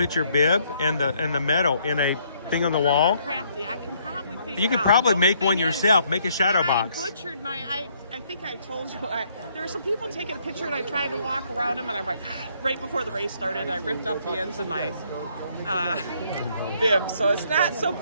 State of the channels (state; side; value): inverted; both; correlation -0.68